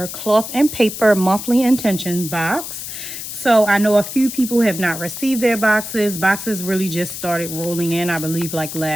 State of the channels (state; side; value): noise; left; hiss, 8 dB below the sound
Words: cloth and paper monthly intention box. So I know a few people have not received their boxes. Boxes really just started rolling in, I believe, like